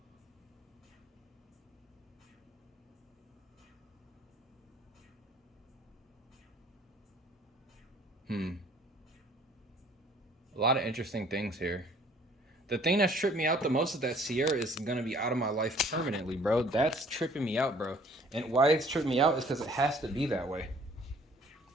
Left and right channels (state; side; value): normal; both; correlation 0.56